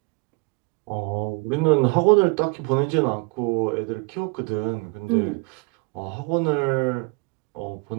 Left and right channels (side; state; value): left; quieter; 30.5 dB